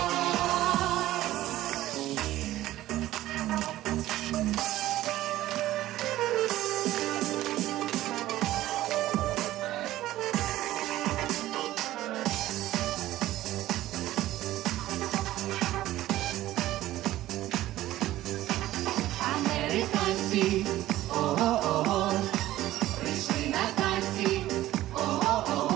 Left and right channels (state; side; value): quieter; left; 15.1 dB